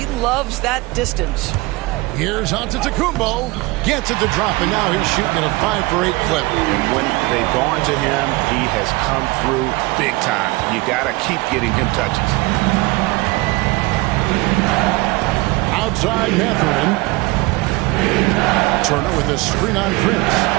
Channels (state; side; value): quieter; left; 22.7 dB